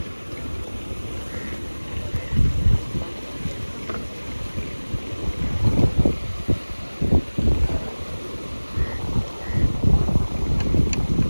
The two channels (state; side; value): inverted; both; correlation -1.00